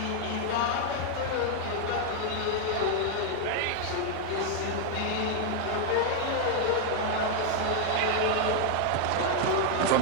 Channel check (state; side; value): different; both; correlation 0.00